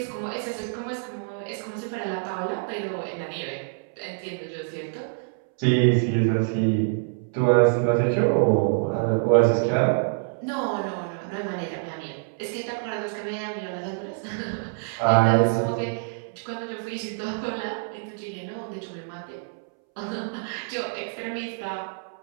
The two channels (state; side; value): silent; left; 61 dB below the other